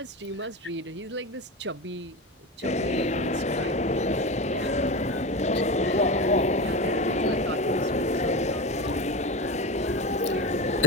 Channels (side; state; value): both; normal; correlation 0.24